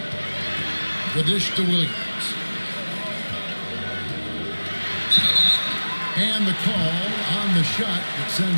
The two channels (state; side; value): inverted; both; correlation -1.00